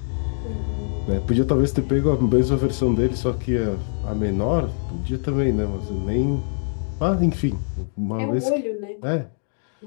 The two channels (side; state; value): right; silent; digital silence